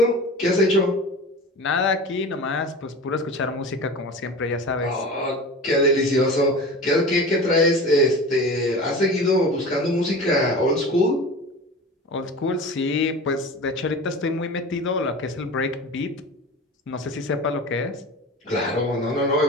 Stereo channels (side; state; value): both; normal; correlation 0.34